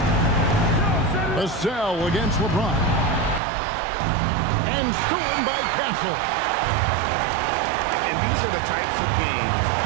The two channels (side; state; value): left; drops out; at 3.4 s